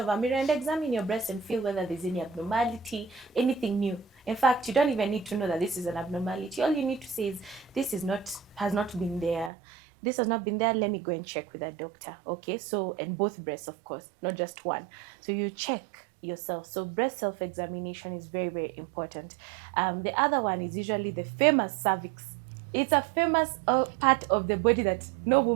a mirror and examine your breast and feel whether there's any abnormality, anything new. In fact, you don't even need to know that this is an abnormality. All you need to say is, this has not been there. This has not been there. Let me go and check with a doctor. Okay, so, and both breasts, of course, not just one. So you check yourself. So breast self-examination is very, very important. The other one is usually the famous cervix. It's a famous part of the body that no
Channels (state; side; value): drops out; left; at 9.5 s